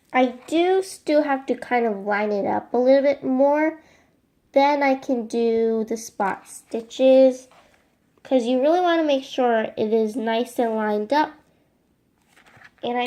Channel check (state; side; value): identical; both; correlation 1.00